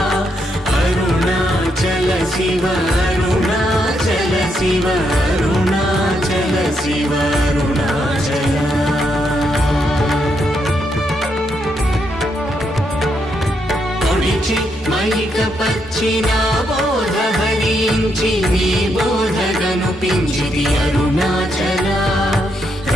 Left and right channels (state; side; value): normal; both; correlation 0.78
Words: అరుణాచల శివ అరుణాచల శివ అరుణాచల శివ అరుణాచల మైక పచ్చిన బోధ హరించి నీ బోధగను పించిది అరుణాచల